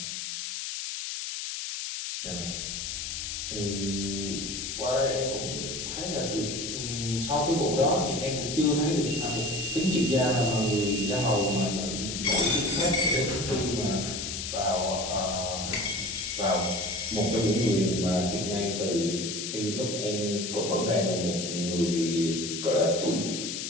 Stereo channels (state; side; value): noise; left; hiss, 5 dB below the sound